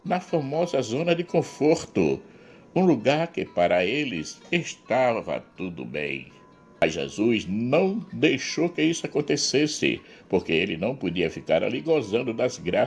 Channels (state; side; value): identical; both; correlation 1.00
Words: na famosa zona de conforto, um lugar que para eles estava tudo bem. Mas Jesus não deixou que isso acontecesse, porque ele não podia ficar ali gozando das